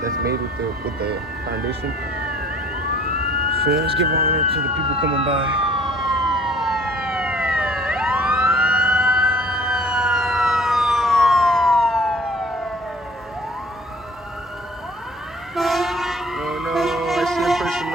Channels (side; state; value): both; normal; correlation 0.53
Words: made with the foundation. So let's give honor to the people coming by. Oh no, I see a person